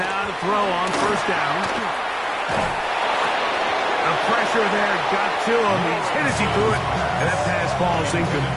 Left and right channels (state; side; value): identical; both; correlation 1.00